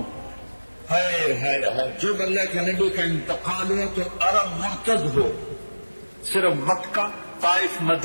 ہے جب اللہ کے نبی کا انتقال ہوا تو عرب مرتد ہو، صرف مکہ، طائف،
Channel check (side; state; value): both; inverted; correlation -1.00